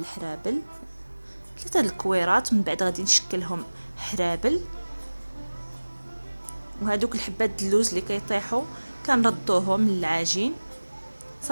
3 د الكويرات. من بعد غادي نشكلهم حرابل، وهذوك الحبات د اللوز اللي كيطيحوا كنردوهم للعجين.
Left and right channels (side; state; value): both; inverted; correlation -1.00